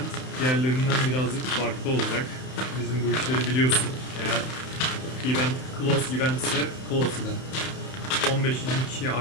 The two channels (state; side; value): late; right; 31 ms